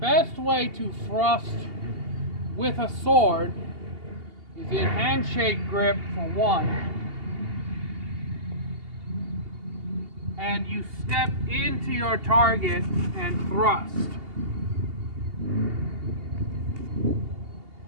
way to thrust with a sword is in handshake grip for one. And you step into your target and thrust.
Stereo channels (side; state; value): left; late; 2.8 ms